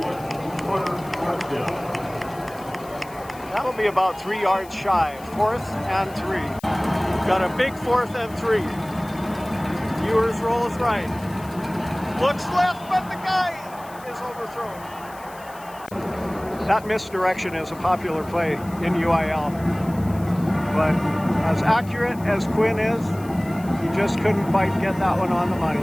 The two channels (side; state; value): left; noise; hiss, 22 dB below the sound